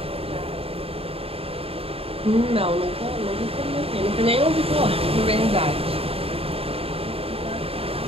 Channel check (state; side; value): late; left; 0.28 ms